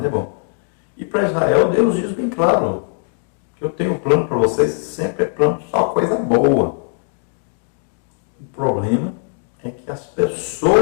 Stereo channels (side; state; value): right; silent; 56 dB below the other